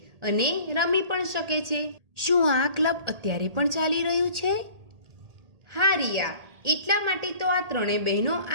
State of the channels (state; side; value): late; left; 1.8 ms